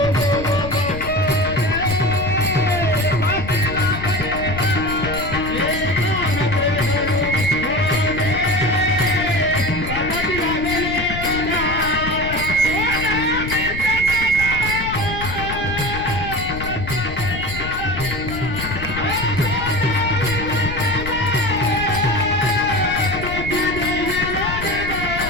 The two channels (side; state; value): left; noise; rumble, 8 dB below the sound